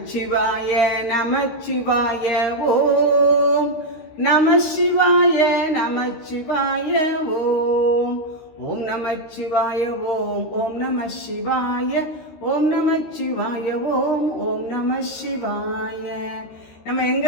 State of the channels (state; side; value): late; right; 13 ms